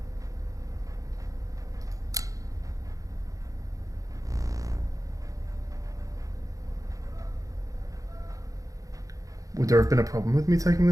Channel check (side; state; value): left; late; 0.16 ms